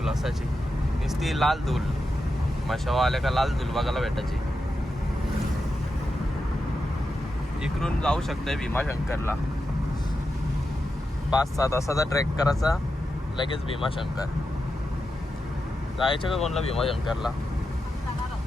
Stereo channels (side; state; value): both; normal; correlation 0.88